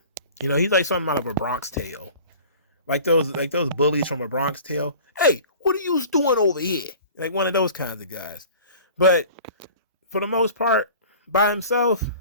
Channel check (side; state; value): both; inverted; correlation -0.44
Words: He's like something out of a Bronx Tale. Like those bullies from a Bronx Tale. Hey, what are you doing over here? Like one of those kinds of guys. But for the most part, by himself,